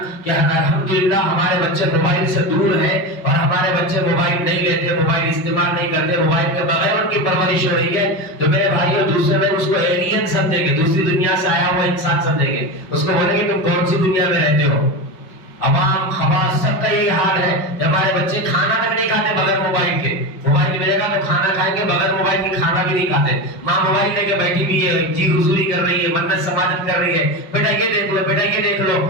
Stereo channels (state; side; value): late; right; 5.3 ms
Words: کہ الحمدللہ ہمارے بچے موبائل سے دور ہیں اور ہمارے بچے موبائل نہیں لیتے، موبائل استعمال نہیں کرتے، موبائل کے بغیر ان کی پرورش ہو رہی ہے، تو میرے بھائیوں دوسرے لوگ اس کو ایلین سمجھیں گے، دوسری دنیا سے آیا ہوا انسان سمجھیں گے. اس کو بولیں گے تم کون سی دنیا میں رہتے ہو. عوام خواص سب کا یہی حال ہے کہ ہمارے بچے کھانا تک نہیں کھاتے بغیر موبائل کے. موبائل ملے گا تو کھانا کھائیں گے، بغیر موبائل کے کھانا بھی نہیں کھاتے. ماں موبائل لے کے بیٹھی ہوئی ہے، جی حضوری کر رہی ہے، منت سماجت کر رہی ہے، بیٹا یہ دیکھ لو، بیٹا یہ دیکھ لو،